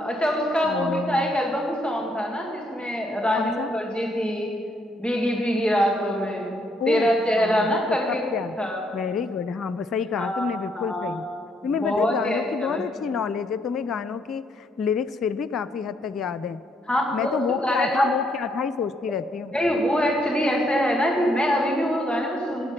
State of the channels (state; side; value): normal; both; correlation 0.72